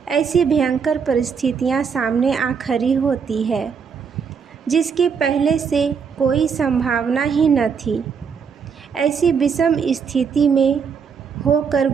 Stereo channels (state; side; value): quieter; left; 6.3 dB